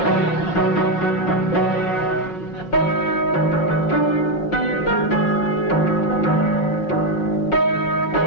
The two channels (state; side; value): late; right; 5.3 ms